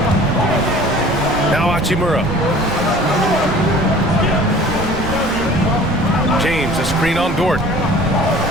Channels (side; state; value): right; noise; rumble, 8 dB below the sound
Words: Now Hachimura. James, a screen on Dort.